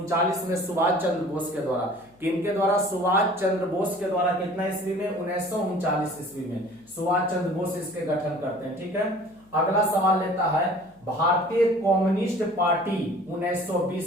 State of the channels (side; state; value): left; noise; hum, 29 dB below the sound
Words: में सुभाष चंद्र बोस के द्वारा। किनके द्वारा? सुभाष चंद्र बोस के द्वारा। कितना ईस्वी में? 1939 ईस्वी में सुभाष चंद्र बोस इसके गठन करते हैं। ठीक है, अगला सवाल लेता है भारतीय कम्युनिस्ट पार्टी